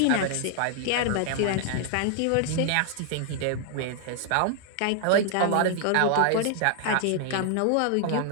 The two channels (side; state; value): both; different; correlation 0.00